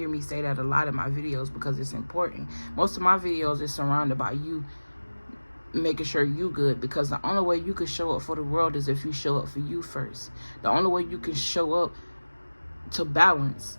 me say that a lot in my videos because it's important. Most of my videos is surrounded by you making sure you good, because the only way you can show up for the world is if you show up for you first. The only way you can show up to balance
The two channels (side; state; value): both; inverted; correlation -1.00